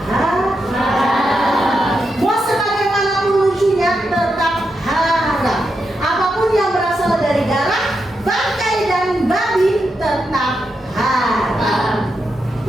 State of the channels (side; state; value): both; normal; correlation 0.85